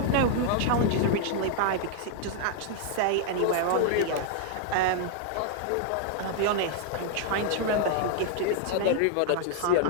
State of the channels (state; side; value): different; both; correlation 0.00